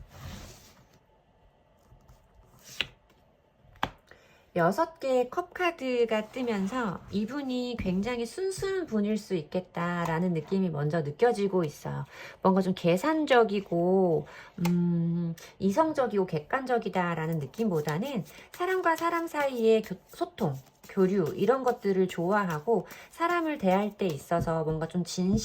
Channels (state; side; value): identical; both; correlation 1.00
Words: 6개의 컵 카드가 뜨면서 이분이 굉장히 순수한 분일 수 있겠다라는 느낌이 먼저 느껴지고 있어요. 뭔가 좀 계산적이고 이성적이고 객관적이다라는 느낌보다는 사람과 사람 사이의 소통, 교류 이런 것들을 좋아하고 사람을 대할 때 있어서 뭔가 좀